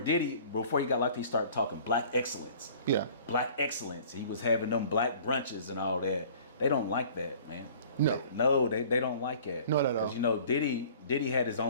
before he got locked, he started talking black excellence. Yeah. Black excellence. He was having them black brunches and all that. They don't like that, man. No. They don't like it. Not at all. Because, you know, Diddy had his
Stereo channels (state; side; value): inverted; both; correlation -0.49